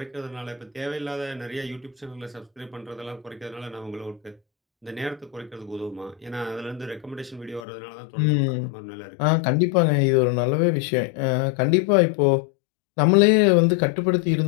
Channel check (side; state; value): right; drops out; at 7.7 s